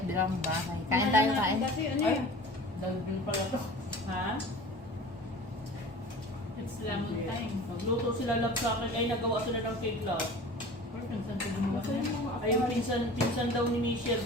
bahay. Kain tayo, kain. Kasi ano Ay, yun? dagdag pala to. Ha? It's lemon time. Magluto sila love sa akin. Ay, nagawa sila ng cake love. Or minsan ko gumawa na yun. Ay, yung pinsan daw ni Michelle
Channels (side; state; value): both; normal; correlation 0.40